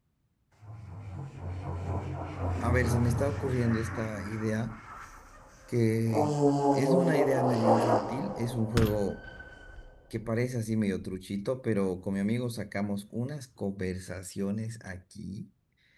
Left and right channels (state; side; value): identical; both; correlation 1.00